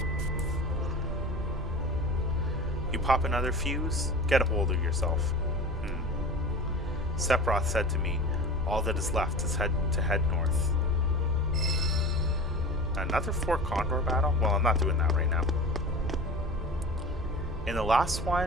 You pop another fuse? Get a hold of yourself. Sephiroth said to me, all that is left is to head north. Another 4 Condor battle? Well, I'm not doing that right now. In the last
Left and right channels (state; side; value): normal; both; correlation 0.35